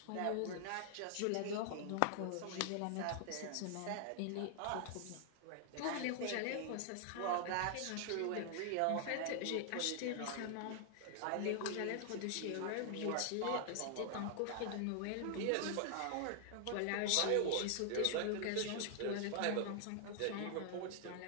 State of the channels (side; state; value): both; different; correlation 0.00